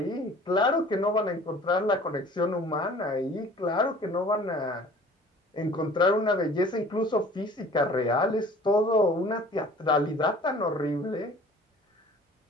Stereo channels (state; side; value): normal; both; correlation 0.48